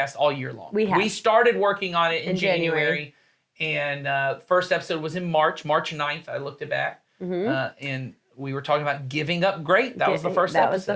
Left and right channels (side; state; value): both; identical; correlation 1.00